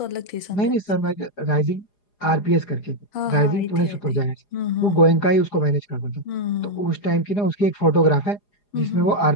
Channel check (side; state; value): right; late; 4.9 ms